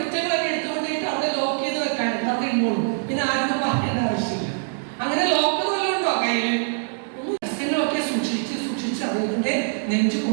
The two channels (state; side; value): silent; left; digital silence